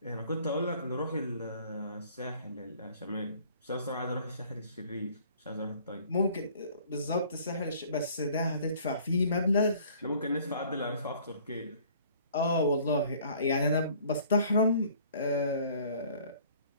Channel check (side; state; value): both; inverted; correlation -0.55